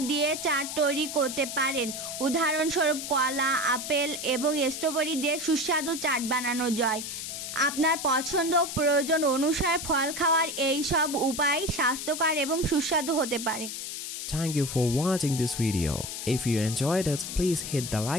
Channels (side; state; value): left; noise; hiss, 6 dB below the sound